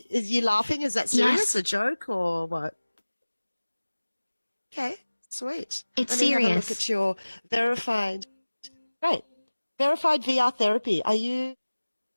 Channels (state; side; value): inverted; both; correlation -1.00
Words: Is you laughing? Is that serious? Yes, A joke or what? Okay. Sweet. it's Let me have a look serious. at your verified. Great. Verified VR therapy. Are you